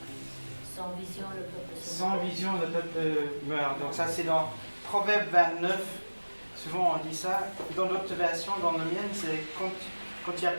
Sans vision, le peuple se Sans vision, le peuple meurt. Donc ça, c'est dans Proverbe 29. Souvent, on dit ça. Dans d'autres versions, dans le mien, c'est quand il n'y a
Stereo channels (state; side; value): inverted; both; correlation -1.00